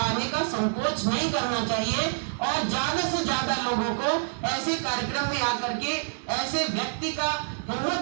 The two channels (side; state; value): left; silent; 60 dB below the other